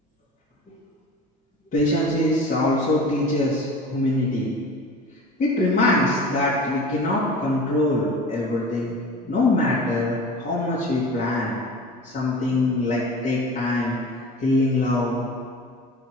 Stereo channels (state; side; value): normal; both; correlation 0.38